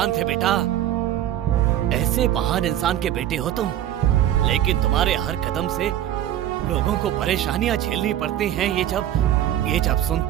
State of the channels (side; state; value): left; quieter; 11.8 dB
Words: थे बेटा। ऐसे महान इंसान के बेटे हो तुम, लेकिन तुम्हारे हर कदम से लोगों को परेशानियां झेलनी पड़ती हैं। ये जब